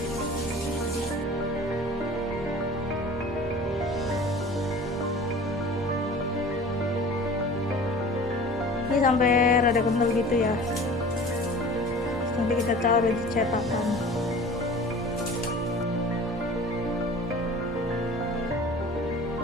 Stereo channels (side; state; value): both; normal; correlation 0.42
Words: Ini sampai rada kental gitu ya. Nanti kita taruh di cetakan.